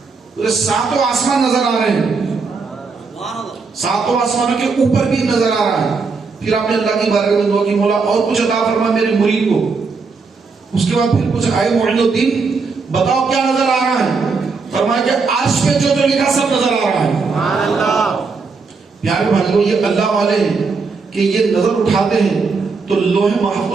ساتوں آسمان نظر آ رہے ہیں، ساتوں آسمانوں کے اوپر بھی نظر آ رہا ہے۔ پھر آپ نے اللہ کی بارگاہ میں دعا کی، مولا اور کچھ عطا فرما میرے مرید کو۔ اس کے بعد پھر پوچھا اے معین الدین بتاؤ کیا نظر آ رہا ہے؟ فرمایا کہ عرش پہ جو لکھا سب نظر آ رہا ہے۔ پیارے بھائیوں، یہ اللہ والے ہیں کہ یہ نظر اٹھاتے ہیں تو لوح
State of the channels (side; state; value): left; quieter; 4.6 dB